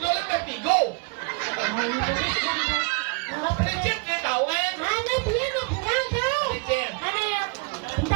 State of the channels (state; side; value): quieter; left; 31.5 dB